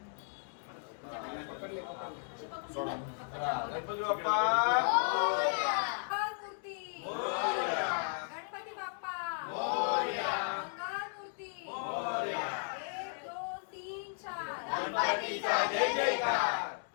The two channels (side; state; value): right; silent; 54 dB below the other